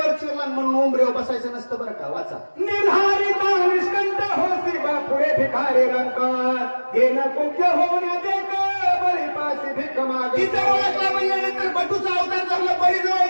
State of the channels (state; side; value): inverted; both; correlation -1.00